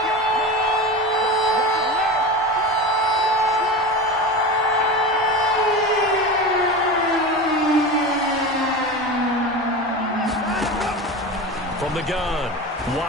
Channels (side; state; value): both; normal; correlation 0.27